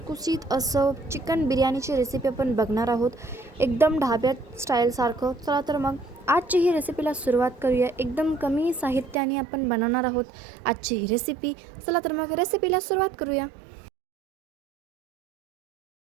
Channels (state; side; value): drops out; left; at 9.2 s